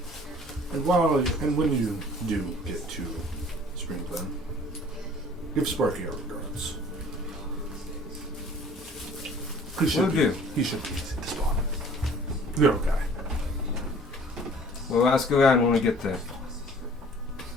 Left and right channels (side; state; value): both; normal; correlation 0.51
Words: And when you do get to Spring Glen, give Sparky our regards. He should be easy to spot. You're okay. We'll ask around when we get there.